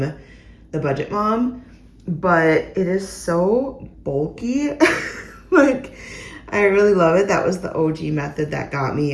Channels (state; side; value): identical; both; correlation 1.00